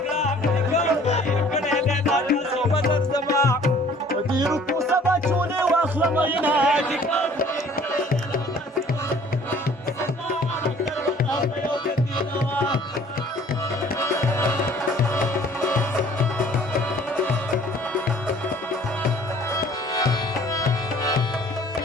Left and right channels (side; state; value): both; normal; correlation 0.54